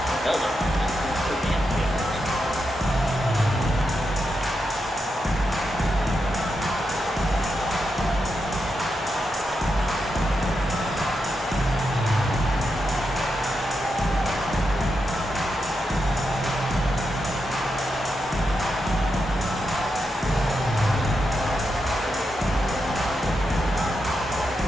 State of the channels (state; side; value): normal; both; correlation 0.85